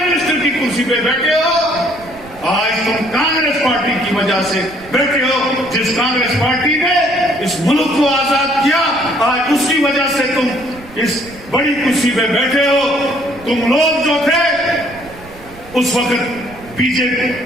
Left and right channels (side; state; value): right; noise; rumble, 21 dB below the sound